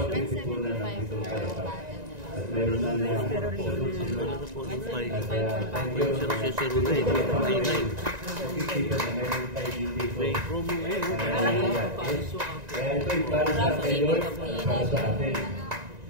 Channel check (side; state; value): left; late; 1.9 ms